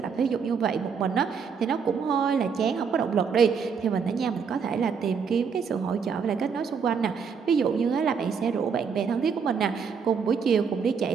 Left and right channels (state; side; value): quieter; left; 6.2 dB